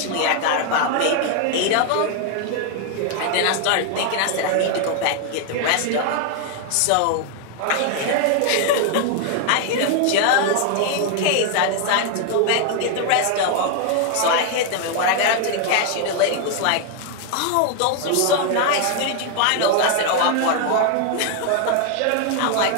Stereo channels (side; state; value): both; different; correlation 0.00